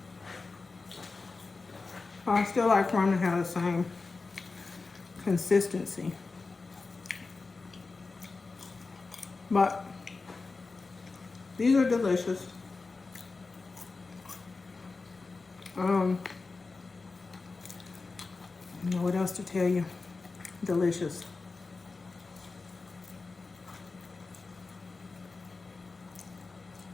I still like for them to have the same consistency. But these are delicious. I don't know what else to tell you. Delicious.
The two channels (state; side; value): quieter; right; 4.0 dB